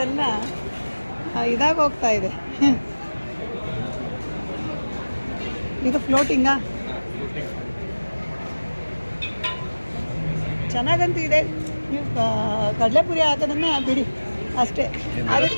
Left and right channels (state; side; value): inverted; both; correlation -1.00